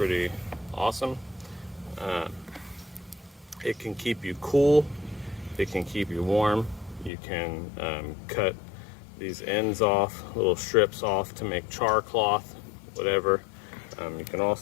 awesome. It can keep you cool, it can keep you warm. You can cut these ends off, little strips off to make char cloth, whatever. You can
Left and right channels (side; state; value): right; drops out; at 7.1 s